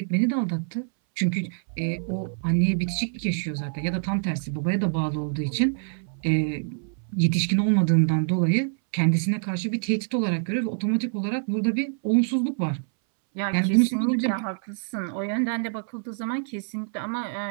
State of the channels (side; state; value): left; silent; 61 dB below the other